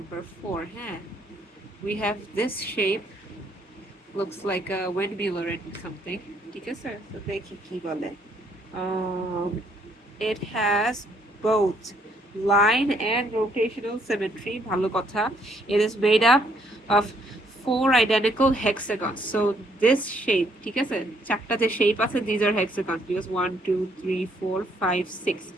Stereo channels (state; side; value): normal; both; correlation 0.68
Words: 4. Huh? We have this shape, looks like a windmill or something. ঠিক আছে? So দেখি কি বলে. It has both line and rotational symmetry. ভালো কথা. It is made up of 4 identical hexagons. So this shape, ঠিক আছে? চারটা যে shape আছে, these are hexagons because 1, 2, 3, 4, 5, 6.